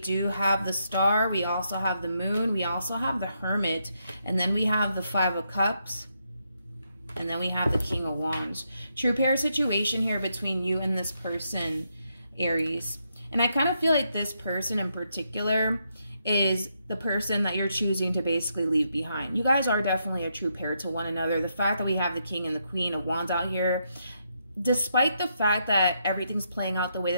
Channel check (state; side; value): inverted; both; correlation -0.79